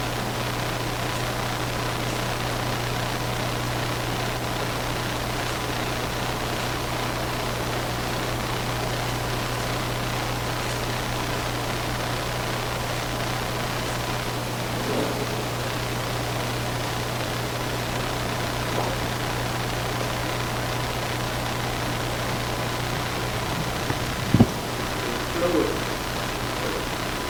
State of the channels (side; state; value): both; identical; correlation 1.00